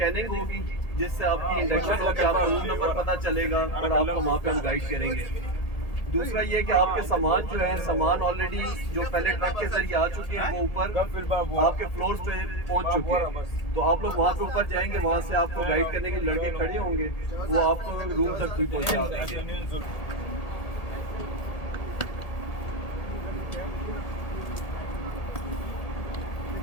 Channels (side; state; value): right; late; 1.8 ms